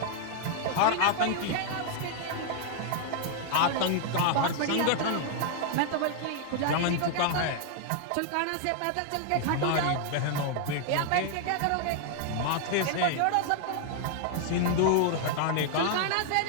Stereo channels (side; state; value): both; different; correlation 0.00